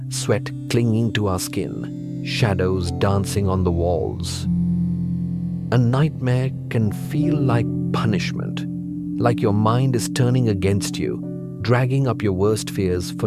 sweat clinging to our skin, shadows dancing on the walls. A nightmare can feel like punishment, like your mind is turning against you, dragging up your worst fears for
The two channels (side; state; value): both; identical; correlation 1.00